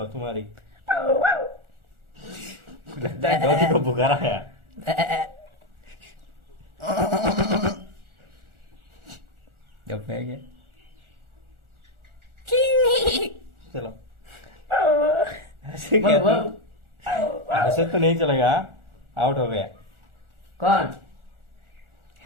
तुम्हारी। लगता है डॉगी को बुखार आया। जब है क्या? चलो ऐसे क्या ऐसे तो नहीं चलेगा, आउट हो गया। कौन?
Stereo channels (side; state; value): left; late; 1.4 ms